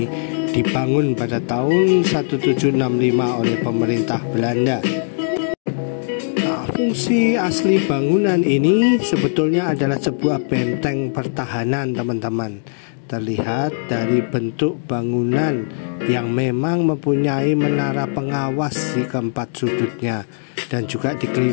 dibangun pada tahun 1765 oleh pemerintah Belanda. Nah, fungsi asli bangunan ini sebetulnya adalah sebuah benteng pertahanan teman-teman. Terlihat dari bentuk bangunan yang memang mempunyai menara pengawas di keempat sudutnya dan juga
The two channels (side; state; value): right; silent; digital silence